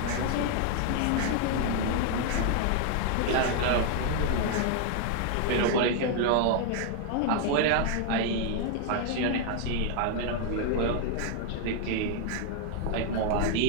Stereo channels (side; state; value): both; different; correlation 0.00